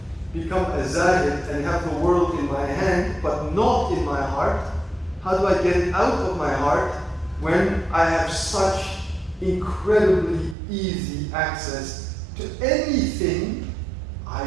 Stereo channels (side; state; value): left; drops out; at 10.6 s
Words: become a zahid and have the world in my hand, but not in my heart, how do I get it out of my heart when I have such incredibly easy access to anything I